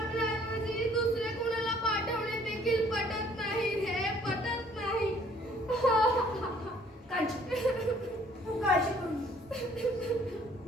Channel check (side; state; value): both; normal; correlation 0.59